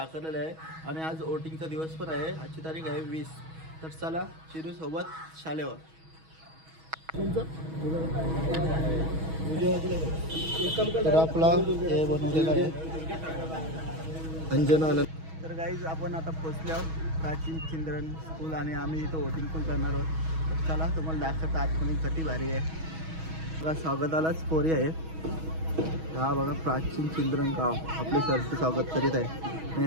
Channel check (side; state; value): left; late; 6.2 ms